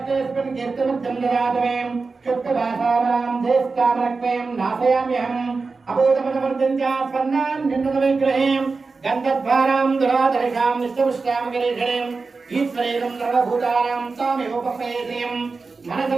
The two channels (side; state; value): left; quieter; 4.2 dB